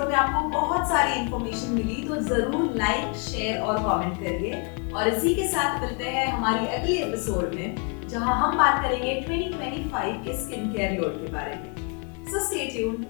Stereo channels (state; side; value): quieter; right; 34.8 dB